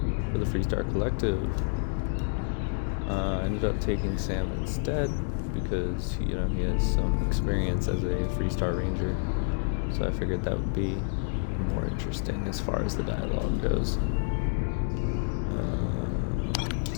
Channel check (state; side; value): silent; right; digital silence